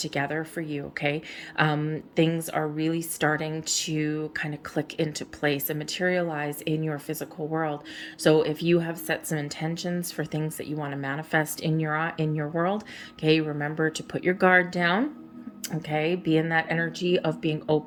for you. Okay, things are really starting to kind of click into place and materialize in your physical world. So if you have set some intentions for things that you want to manifest in your world, okay, remember to put your guard down. Okay, be in that energy of being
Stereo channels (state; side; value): identical; both; correlation 1.00